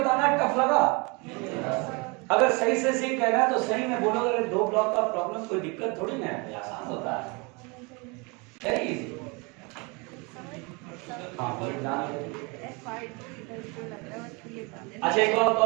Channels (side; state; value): left; quieter; 29.4 dB